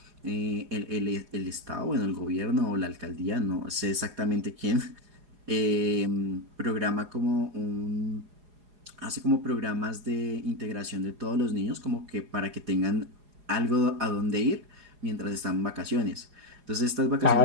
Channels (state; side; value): late; left; 4.8 ms